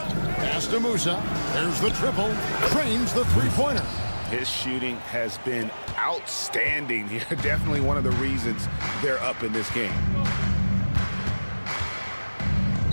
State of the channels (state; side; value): inverted; both; correlation -1.00